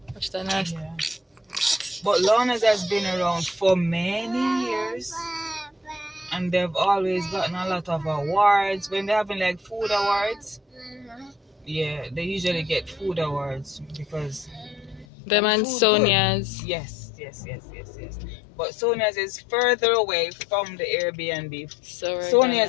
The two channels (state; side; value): drops out; right; at 15.1 s